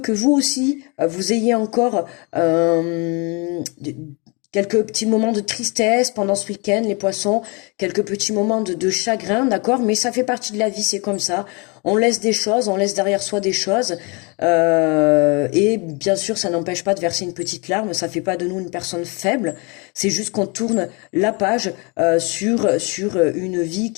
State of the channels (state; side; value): quieter; right; 30.9 dB